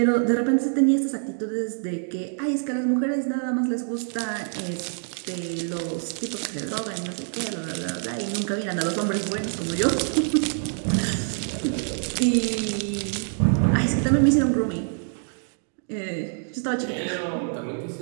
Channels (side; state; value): left; silent; 61 dB below the other